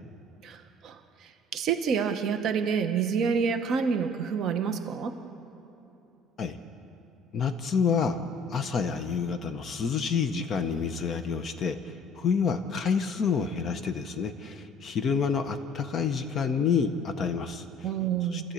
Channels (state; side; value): normal; both; correlation 0.51